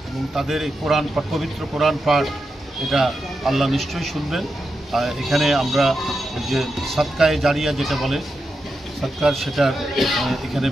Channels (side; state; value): both; normal; correlation 0.88